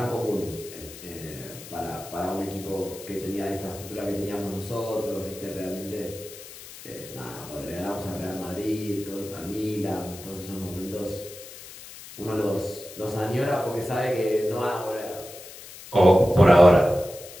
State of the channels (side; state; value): left; noise; hiss, 15 dB below the sound